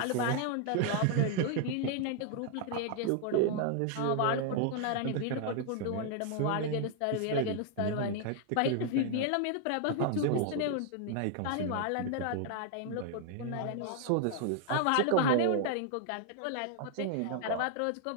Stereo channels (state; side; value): different; both; correlation 0.00